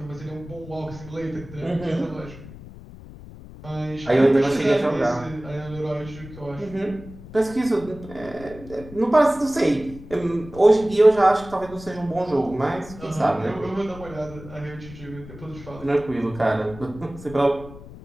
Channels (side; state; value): left; noise; rumble, 16 dB below the sound